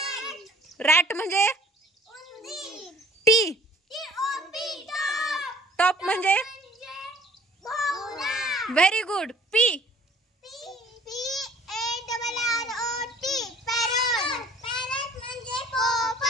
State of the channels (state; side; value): normal; both; correlation 0.52